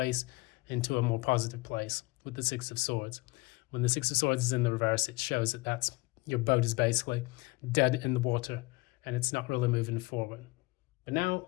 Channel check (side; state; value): right; quieter; 23.8 dB